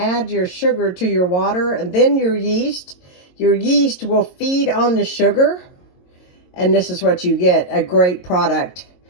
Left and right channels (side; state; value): right; late; 22 ms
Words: your sugar to your water and then your yeast. Your yeast will feed on the sugar. And this is what you get, a great product.